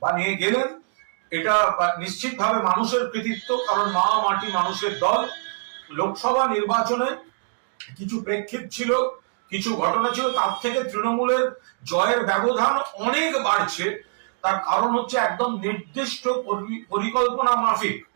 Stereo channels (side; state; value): left; silent; digital silence